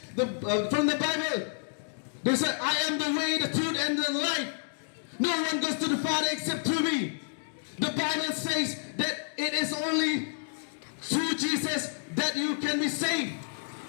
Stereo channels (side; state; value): right; silent; digital silence